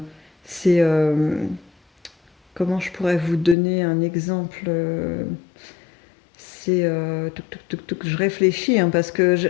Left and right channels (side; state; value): right; drops out; at 3.6 s